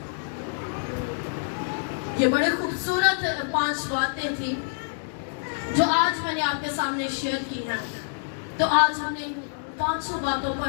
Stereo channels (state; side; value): silent; right; digital silence